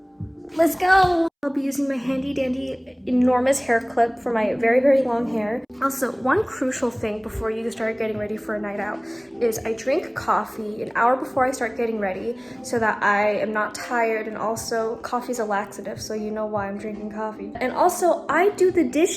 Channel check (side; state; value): both; identical; correlation 1.00